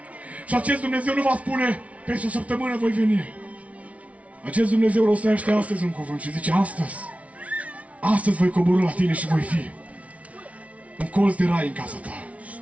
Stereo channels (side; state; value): left; late; 0.066 ms